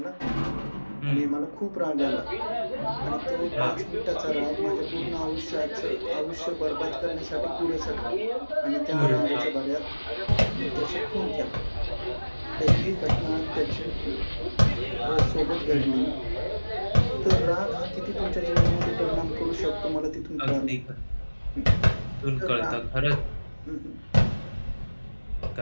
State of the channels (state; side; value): inverted; both; correlation -1.00